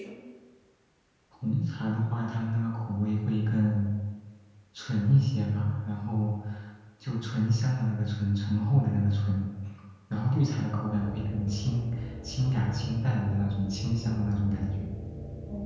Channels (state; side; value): identical; both; correlation 1.00